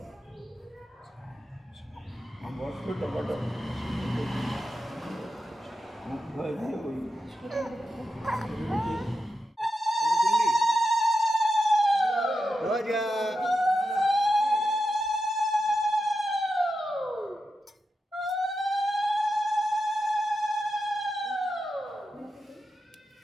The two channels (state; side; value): normal; both; correlation 0.88